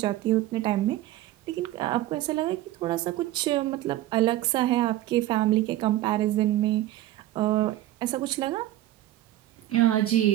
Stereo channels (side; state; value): left; quieter; 14.8 dB